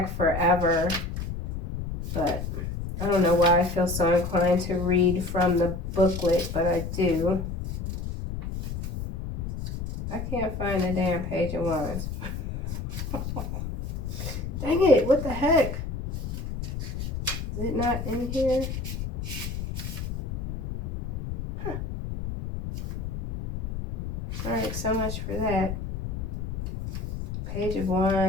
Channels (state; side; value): noise; left; rumble, 5 dB below the sound